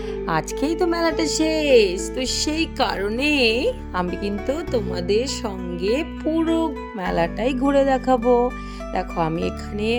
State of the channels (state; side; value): identical; both; correlation 1.00